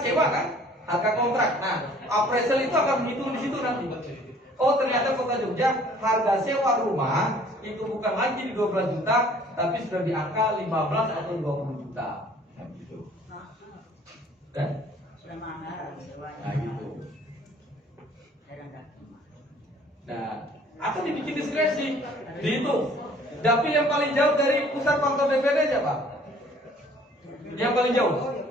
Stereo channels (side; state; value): both; normal; correlation 0.55